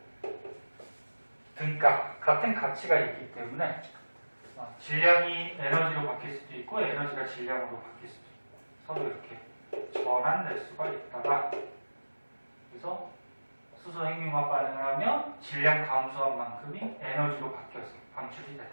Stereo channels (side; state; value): both; inverted; correlation -1.00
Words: 등가 같은 가치가 있기 때문에 질량이 에너지로 바뀔 수도 있고 에너지가 질량으로 바뀔 수도 있고 서로 이렇게 전환될 수가 있다가 그래서 수소 핵융합 반응을 하면 질량 감소한 만큼이 에너지로 바뀌어서 방출이 되더라.